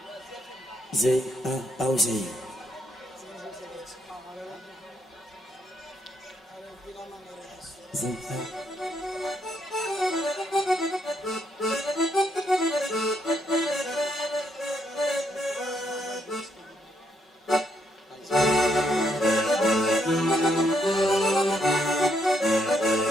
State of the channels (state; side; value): normal; both; correlation 0.75